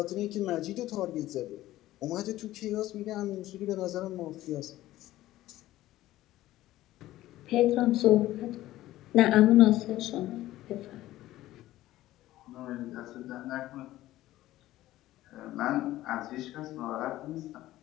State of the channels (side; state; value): right; quieter; 15.4 dB